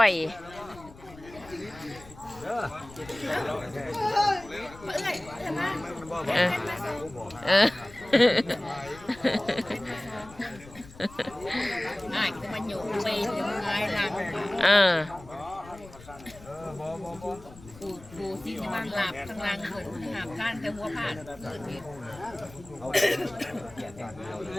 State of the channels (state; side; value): noise; left; rumble, 19 dB below the sound